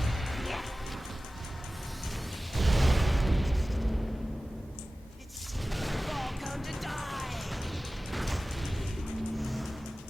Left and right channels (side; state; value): both; normal; correlation 0.96